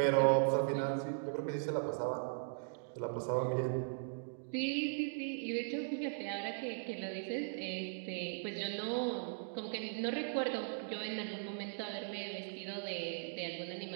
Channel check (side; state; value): left; silent; digital silence